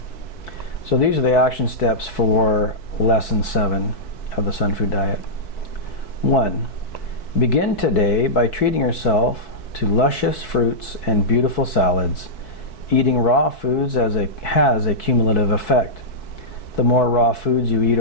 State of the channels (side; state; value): right; late; 4.6 ms